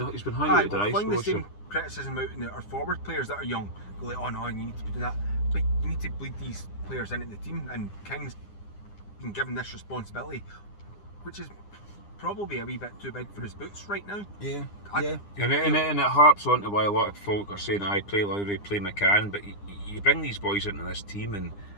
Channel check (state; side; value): late; right; 9.9 ms